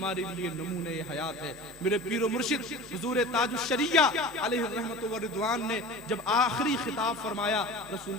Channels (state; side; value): normal; both; correlation 0.36